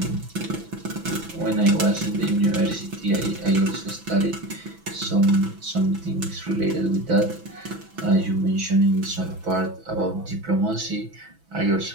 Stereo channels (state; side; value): late; left; 6.0 ms